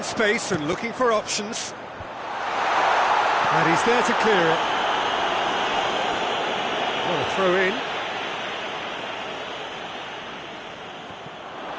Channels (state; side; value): identical; both; correlation 1.00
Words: space and looking for options. And he's there to clear it. What a throw in.